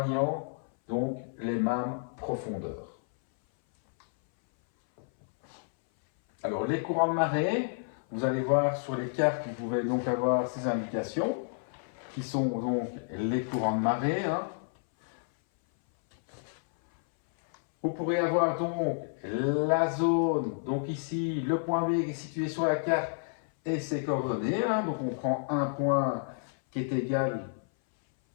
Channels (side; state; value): right; silent; 58 dB below the other